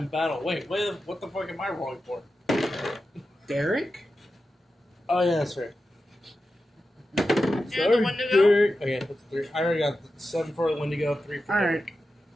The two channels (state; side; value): normal; both; correlation 0.91